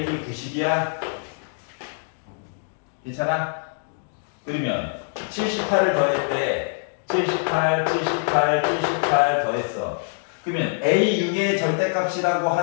90이야? 괜찮아? 그러면 78을 더했대. 78 더했어. 그러면 A6의 절대값이라고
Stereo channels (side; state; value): right; silent; digital silence